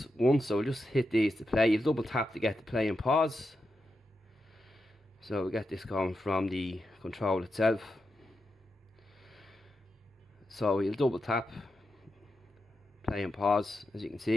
1, so just hit these to play. You double tap to get the play and pause. So we get this going from the control itself. So you'll double tap, play and pause. As you can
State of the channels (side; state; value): both; normal; correlation 0.88